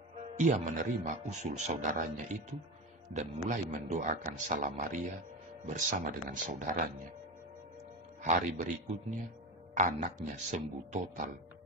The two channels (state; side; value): normal; both; correlation 0.22